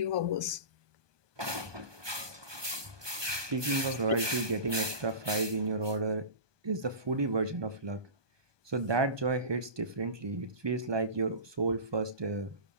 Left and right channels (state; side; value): late; left; 1.2 ms